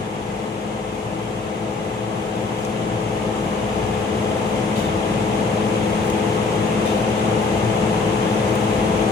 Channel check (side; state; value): right; quieter; 3.9 dB